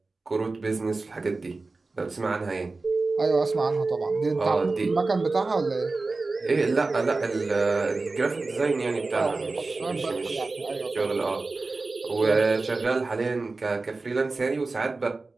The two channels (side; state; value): left; quieter; 3.6 dB